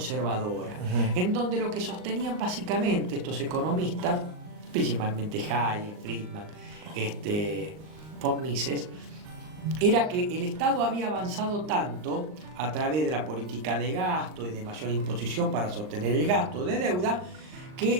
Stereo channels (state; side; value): late; left; 39 ms